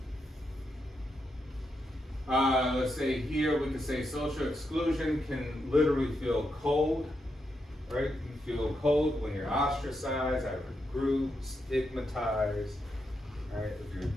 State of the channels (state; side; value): normal; both; correlation 0.83